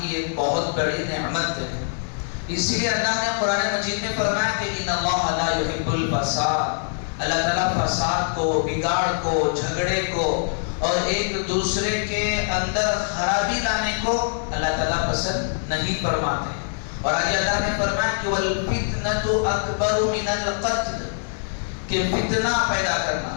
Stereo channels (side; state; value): right; silent; 63 dB below the other